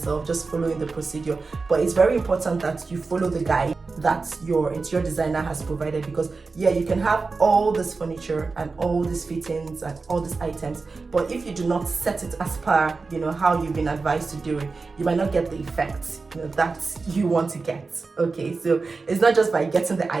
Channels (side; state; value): left; quieter; 4.1 dB